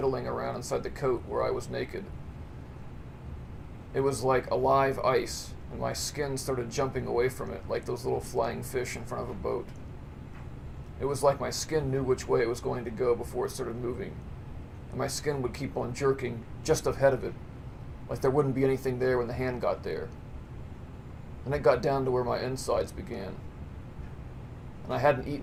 around inside the coat where I was naked. It was like alive ice, and my skin started jumping away from it like those little flying fish in front of a boat. It was like my skin knew which way it was going to go before it started moving, and my skin would keep on jerking just ahead of it, like there wouldn't be anything there when the hand got there. And it got down to where my insides began. And I hadn't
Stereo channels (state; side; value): identical; both; correlation 1.00